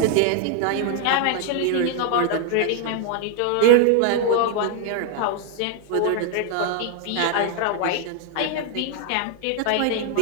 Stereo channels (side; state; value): both; different; correlation 0.00